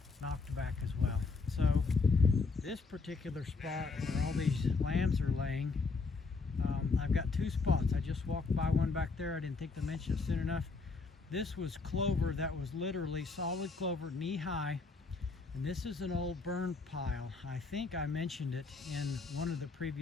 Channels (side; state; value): right; quieter; 4.2 dB